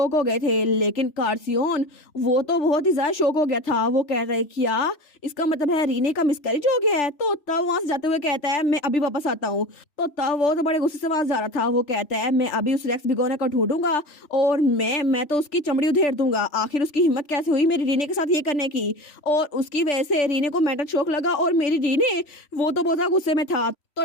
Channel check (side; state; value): right; late; 3.4 ms